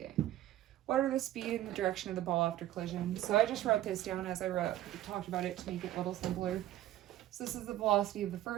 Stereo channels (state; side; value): quieter; left; 13.7 dB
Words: What are the speed and the direction of the ball after collision? So I just wrote this down as I talked about it to make it a little simpler. So this is the velocity of the